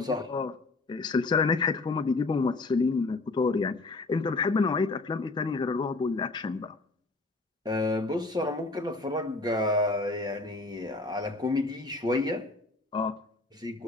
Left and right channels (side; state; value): right; quieter; 3.3 dB